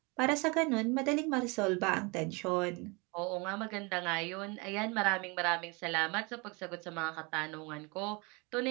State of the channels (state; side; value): quieter; left; 28.6 dB